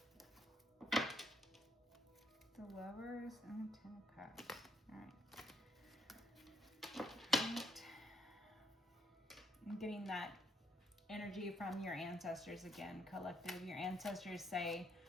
The Lovers and the 10 of Cups. All right. I'm getting that energy from your ancestors again, collective. Your ancestors say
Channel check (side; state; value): both; normal; correlation 0.73